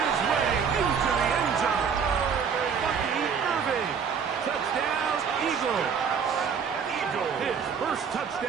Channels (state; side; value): quieter; left; 6.6 dB